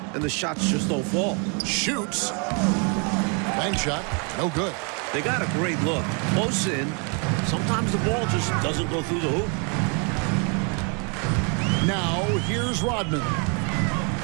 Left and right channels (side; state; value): left; quieter; 36.5 dB